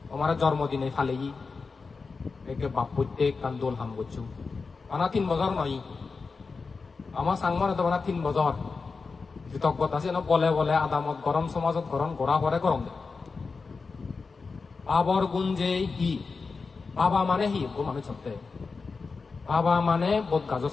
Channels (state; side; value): quieter; right; 4.5 dB